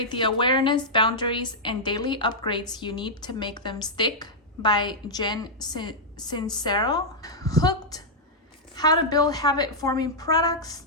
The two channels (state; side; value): normal; both; correlation -0.07